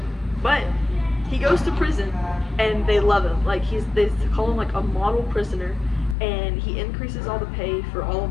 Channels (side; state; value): right; drops out; at 6.2 s